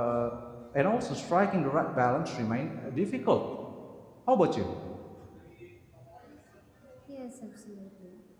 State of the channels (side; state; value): both; identical; correlation 1.00